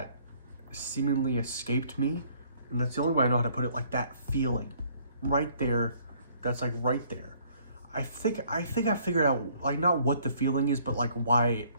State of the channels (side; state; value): both; inverted; correlation -0.62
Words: seemingly escaped me, and that's the only way I know how to put it, like that feeling right there, that's like right there. I think I figured out, like, not what the feeling is, but like why